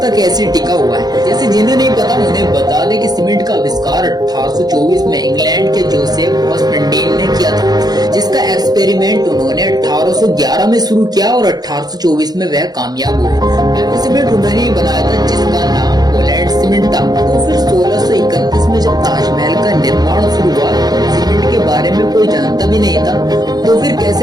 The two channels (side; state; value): left; late; 0.19 ms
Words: तक ऐसे टिका हुआ है। जैसे जिन्हें नहीं पता उन्हें बता दें कि सीमेंट का आविष्कार 1824 में इंग्लैंड के जोसेफ हॉस्पेंडीन ने किया था, जिसका एक्सपेरिमेंट उन्होंने 1811 में शुरू किया और 1824 में वह कामयाब हुए। पहला सीमेंट उन्होंने ही बनाया था, जिसका नाम पोलैंड सीमेंट था। तो फिर 1631 में जब ताजमहल का निर्माण शुरू हुआ, सीमेंट के बारे में कोई जानता भी नहीं था, तो फिर